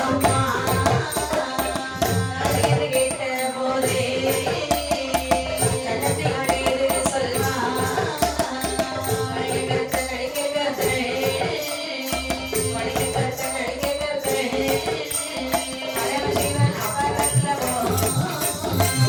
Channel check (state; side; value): identical; both; correlation 1.00